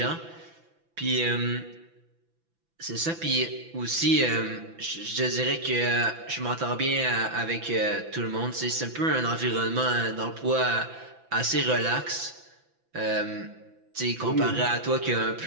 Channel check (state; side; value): late; left; 6.0 ms